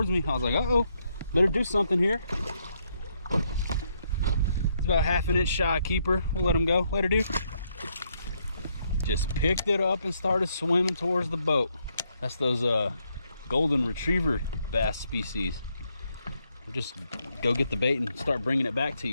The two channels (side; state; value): both; inverted; correlation -0.75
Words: me. I was like, uh-oh, better do something here. It's about 1/2 inch shy keeper. We'll let him go. Later, dude. Just picked it up and started swimming towards the boat. That's those golden retriever bass species. We'll just go get the bait and start bringing it back to